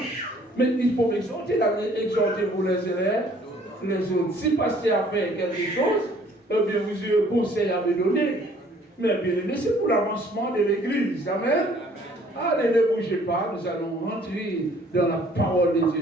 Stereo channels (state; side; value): normal; both; correlation 0.58